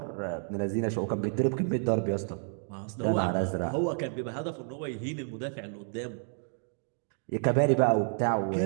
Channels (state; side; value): silent; left; 58 dB below the other